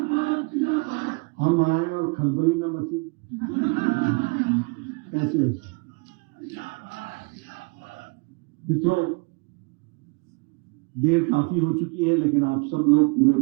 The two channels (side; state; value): left; quieter; 29.9 dB